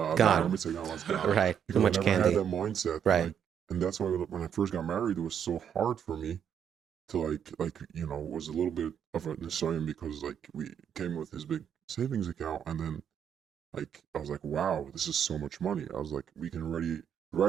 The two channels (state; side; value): quieter; left; 8.5 dB